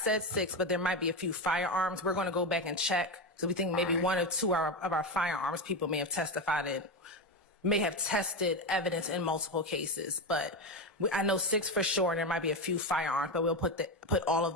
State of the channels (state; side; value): normal; both; correlation 0.15